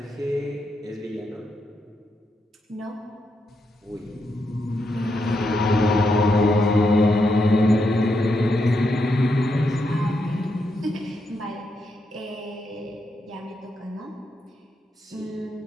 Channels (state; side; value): normal; both; correlation 0.82